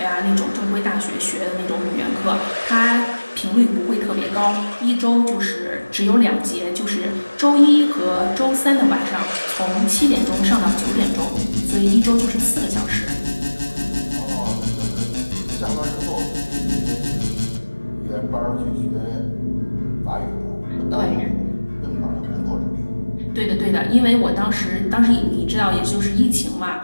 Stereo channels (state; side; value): inverted; both; correlation -1.00